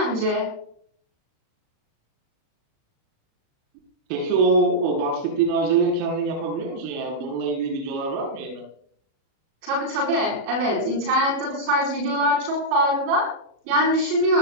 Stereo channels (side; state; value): left; late; 36 ms